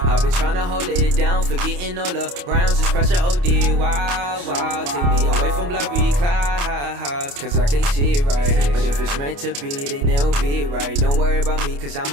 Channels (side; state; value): left; late; 28 ms